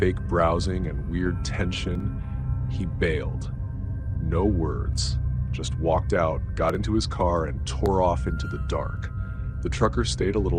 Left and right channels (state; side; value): identical; both; correlation 1.00